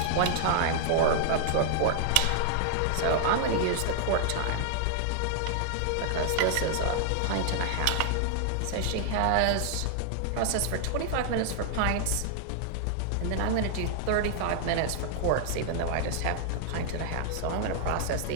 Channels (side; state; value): both; different; correlation 0.00